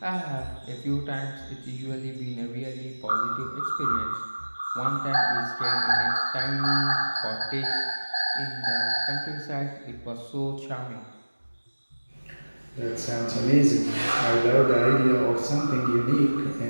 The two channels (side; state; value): both; inverted; correlation -1.00